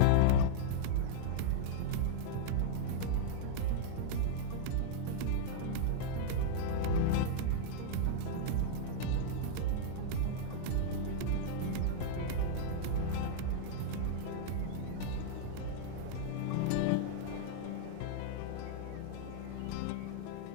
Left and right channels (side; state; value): both; different; correlation -0.01